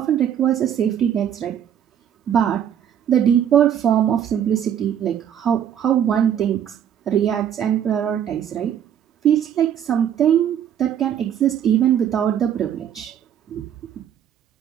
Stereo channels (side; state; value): left; quieter; 9.5 dB